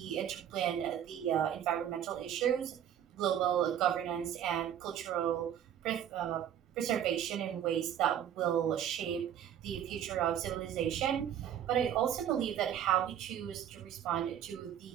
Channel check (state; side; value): quieter; left; 9.9 dB